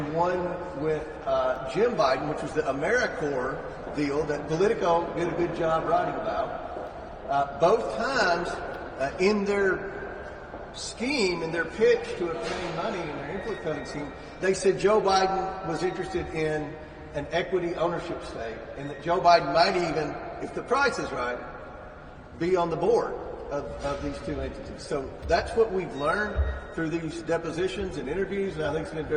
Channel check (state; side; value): identical; both; correlation 1.00